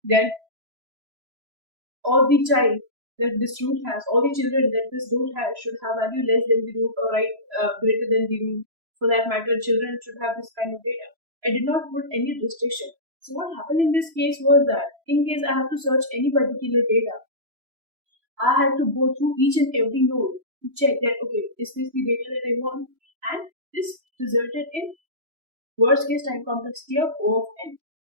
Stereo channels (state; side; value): late; left; 3.0 ms